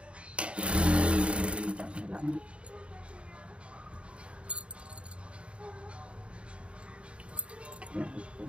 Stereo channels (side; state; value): left; late; 0.058 ms